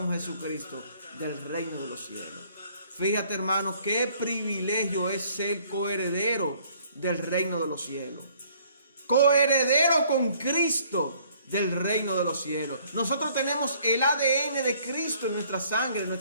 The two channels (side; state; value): both; inverted; correlation -0.61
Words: Jesucristo del reino de los cielos. Fíjate, hermano, qué privilegio es ser coheredero del reino de los cielos, coheredero con Cristo del reino de los cielos. Nosotros tenemos el ADN de Cristo en nuestra sangre, en